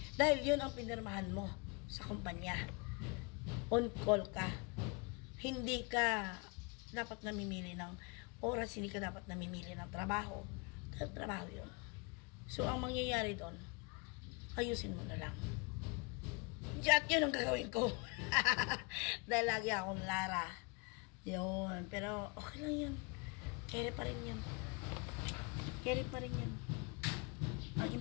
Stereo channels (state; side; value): quieter; right; 30.2 dB